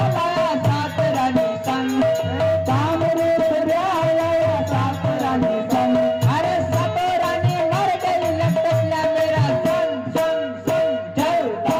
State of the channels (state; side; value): identical; both; correlation 1.00